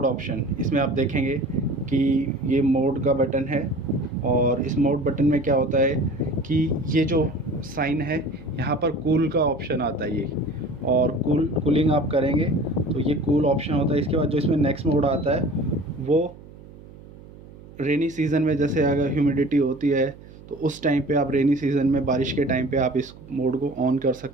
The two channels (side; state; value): right; noise; hum, 19 dB below the sound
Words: ऑप्शन। इसमें आप देखेंगे कि ये मोड का बटन है और इस मोड बटन में क्या होता है कि ये जो साइन है यहाँ पर कूल का ऑप्शन आता है ये, और कूलिंग आप करेंगे तो ये कूल ऑप्शन होता है। इसके बाद जो इसमें नेक्स्ट मोड आता है वो रेनी सीज़न में, जैसे अगर ह्यूमिडिटी होती है तो उस टाइम पे आप रेनी सीज़न में बारिश के टाइम पे आप इस मोड को ऑन कर